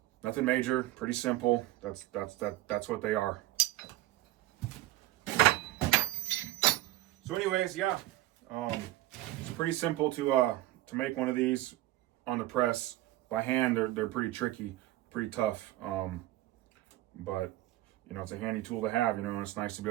nothing major, pretty simple. That's what they are. So anyways, yeah, it's pretty simple to make one of these on the press. By hand, they're pretty tricky, pretty tough. But it's a handy tool to have, and it's nice to be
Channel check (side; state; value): left; quieter; 16.0 dB